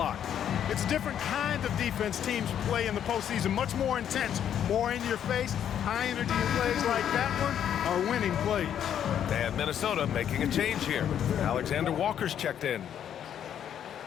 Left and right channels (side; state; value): right; quieter; 9.5 dB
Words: It's a different kind of defense teams play in the postseason, much more intense, more in your face. High energy plays like that one are winning plays. And Minnesota making a change here. Alexander Walker's checked in.